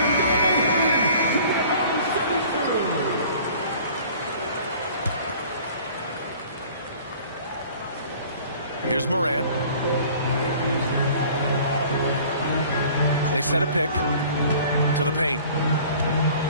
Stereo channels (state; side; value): inverted; both; correlation -0.49